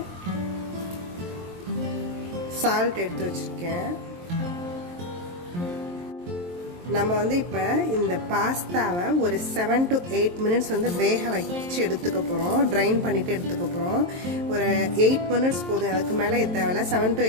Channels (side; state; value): left; late; 23 ms